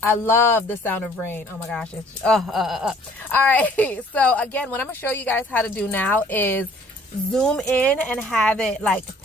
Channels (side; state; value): both; normal; correlation 0.56